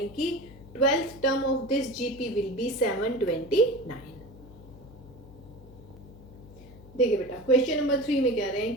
कि 12th term of this GP will be 729। देखिए बेटा क्वेश्चन नंबर 3 में कह रहे हैं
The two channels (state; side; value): noise; left; hum, 20 dB below the sound